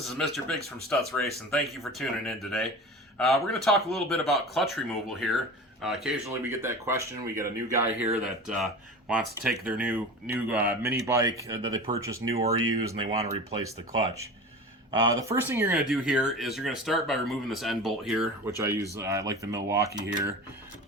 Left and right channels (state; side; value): normal; both; correlation 0.33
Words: is Mr. Biggs from Stutz Race, and thank you for tuning in today. We're going to talk a little bit about clutch removal here. Occasionally we get that question. We get a new guy here that wants to take their new mini bike that they purchased new or used, and they want to replace the clutch. The first thing you're going to do here is you're going to start by removing this end bolt here, which I use, I like the Milwaukee here.